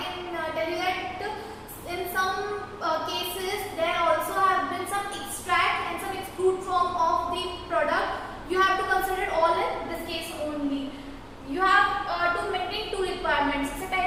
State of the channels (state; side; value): identical; both; correlation 1.00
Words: tell you that in some cases there also have been some extract and some extrude form of the product. You have to consider all in this case only. You have to maintain two requirements. सबसे